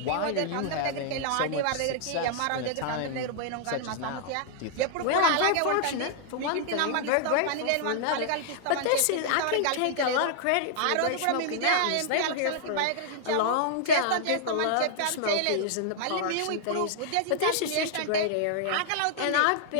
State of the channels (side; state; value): both; different; correlation -0.01